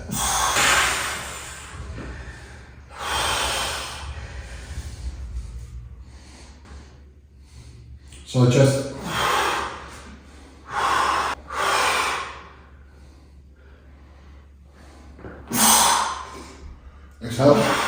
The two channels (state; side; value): identical; both; correlation 1.00